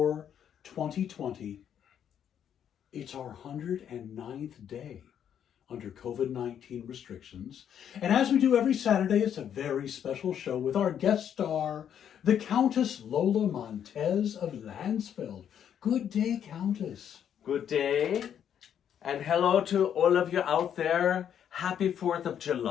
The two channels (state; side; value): quieter; right; 9.1 dB